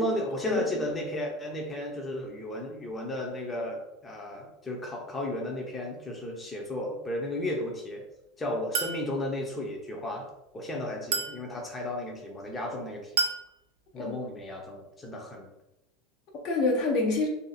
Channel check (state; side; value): normal; both; correlation 0.23